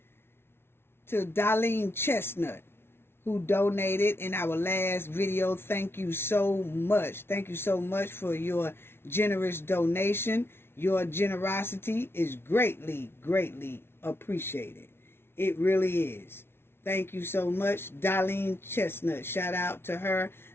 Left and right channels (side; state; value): right; late; 0.12 ms